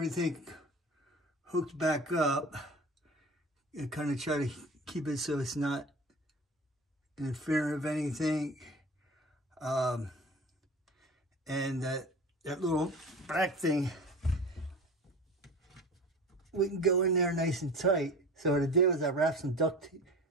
hooked back up and kind of try to keep it so it's not interfering with anything. And that little black thing, we can go in there nice and tight. So what I did was I wrapped some duct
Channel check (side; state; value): both; normal; correlation 0.36